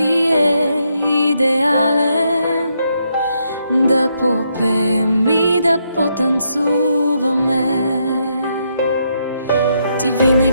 е идеален, да попеем и да потанцуваме. Ти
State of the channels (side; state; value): both; inverted; correlation -0.78